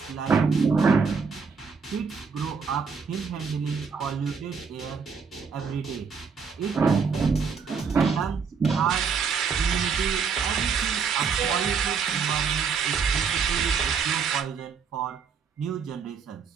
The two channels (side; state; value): left; quieter; 5.8 dB